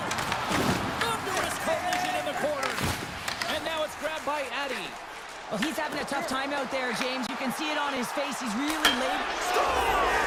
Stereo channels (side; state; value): both; identical; correlation 1.00